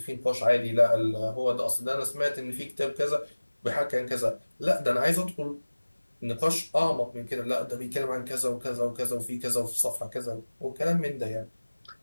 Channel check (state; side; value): inverted; both; correlation -1.00